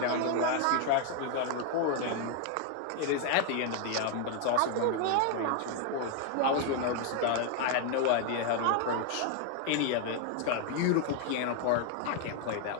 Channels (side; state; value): both; different; correlation 0.00